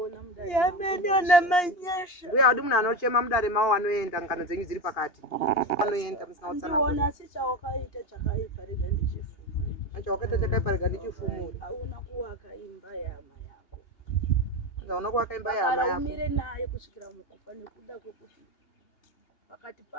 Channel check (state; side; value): late; right; 2.8 ms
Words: mudare Mbuya wadi munhu anochema mudare mavo anoenda ngano dzenyu dziri pakati. Anoenda musina utsanana. ndiona asi chawakaita chakaipa rega ndichifumure Chawakaita chakaipa rega ndichifumure. hauna kuwaka imba yama yako Anzi hauna kuvaka imba yahama kana yako. umire naye kusvikira mukufa nekuda kwekuti pakati